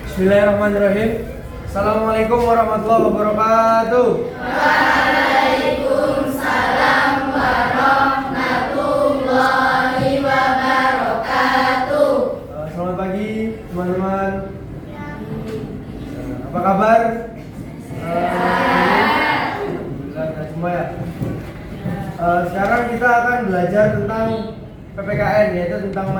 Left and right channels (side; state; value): both; identical; correlation 1.00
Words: Bismillahirrahmanirrahim. Assalamualaikum warahmatullahi wabarakatuh. Waalaikumsalam warahmatullahi wabarakatuh. Selamat pagi teman-teman. Apa kabar? Alhamdulillah semua ya. Sekarang kita akan belajar tentang PPKN, yaitu tentang